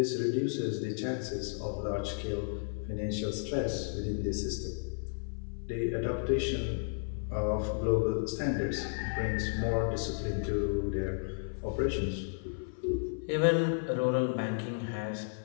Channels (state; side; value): silent; right; 56 dB below the other